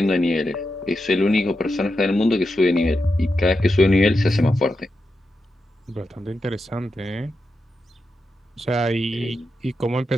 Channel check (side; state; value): both; normal; correlation 0.88